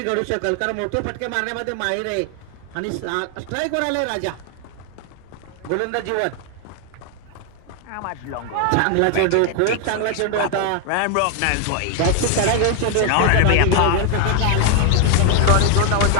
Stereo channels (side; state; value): both; different; correlation 0.00